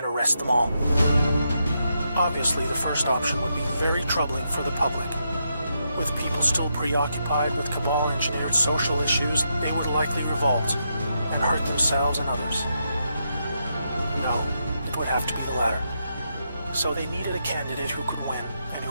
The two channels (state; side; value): inverted; both; correlation -0.82